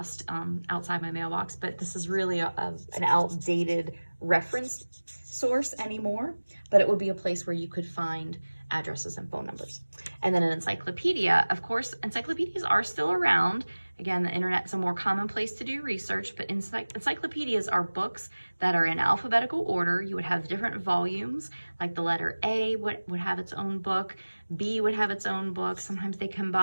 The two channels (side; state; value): both; inverted; correlation -1.00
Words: outside my mailbox, but this is really an outdated reference source anymore, but it would be a place where you could find addresses and phone numbers. And then an encyclopedia, of course, encyclopedias are still around. Again, the internet's a more common place to do research, but encyclopedias are books that are in alphabetical order. You would have different volumes, like the letter A would have its own book, B would have its own book. Sometimes they